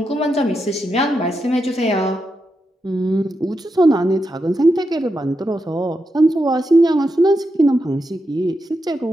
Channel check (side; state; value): both; normal; correlation 0.86